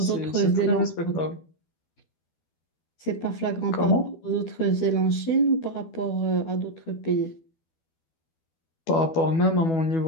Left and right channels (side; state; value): right; late; 12 ms